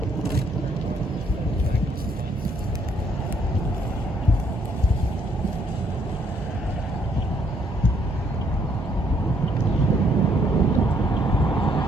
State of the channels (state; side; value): normal; both; correlation 0.69